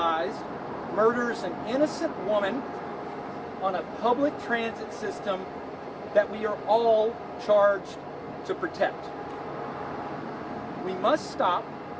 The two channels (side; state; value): both; identical; correlation 1.00